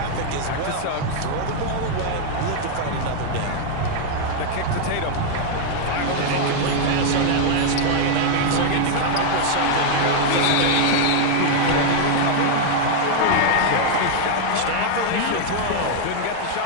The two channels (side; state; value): both; different; correlation 0.00